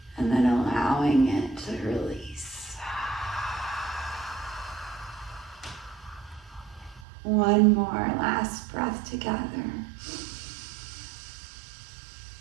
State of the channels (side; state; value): left; drops out; at 7.1 s